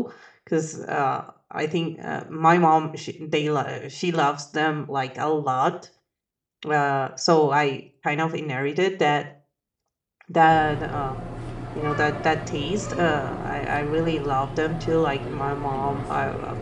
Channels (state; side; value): identical; both; correlation 1.00